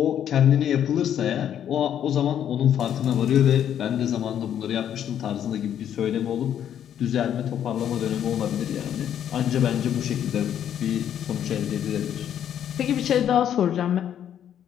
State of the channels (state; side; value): quieter; right; 9.9 dB